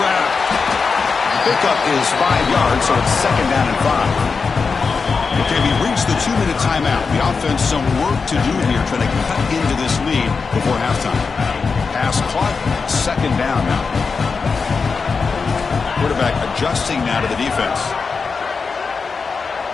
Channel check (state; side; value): quieter; right; 4.9 dB